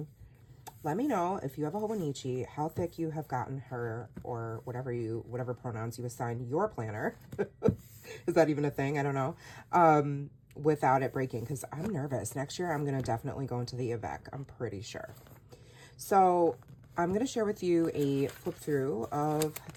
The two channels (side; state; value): both; identical; correlation 1.00